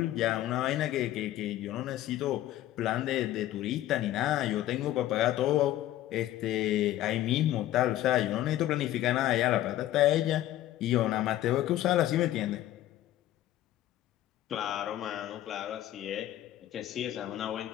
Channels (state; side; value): quieter; right; 13.8 dB